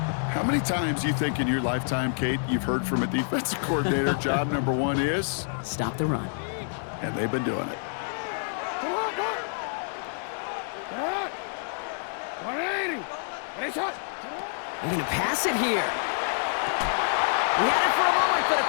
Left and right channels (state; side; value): silent; right; digital silence